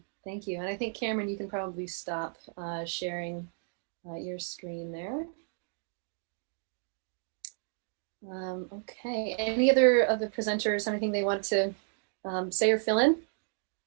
thank you. And I think Cameron, you can probably stop sharing your screen there. Okay, any other of the presenters have anything they want to say or fill in?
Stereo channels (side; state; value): left; silent; 56 dB below the other